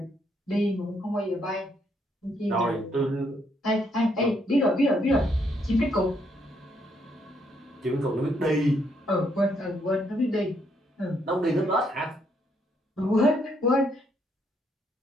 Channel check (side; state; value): both; normal; correlation 0.73